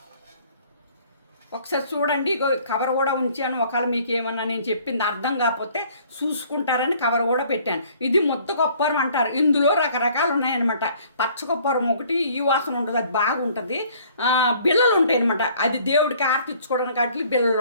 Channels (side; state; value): both; inverted; correlation -0.57